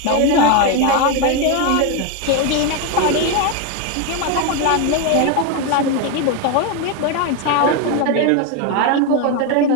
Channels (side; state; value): both; different; correlation 0.02